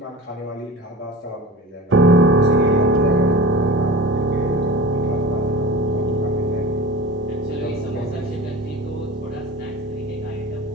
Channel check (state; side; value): normal; both; correlation 0.34